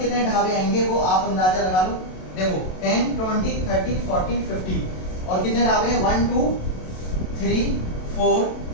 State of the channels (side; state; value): right; late; 27 ms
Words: ढाबे आएंगे वो आप अंदाजा लगा लो। देखो 10 20 30 40 50 और कितने ढाबे हैं 1 2 3 4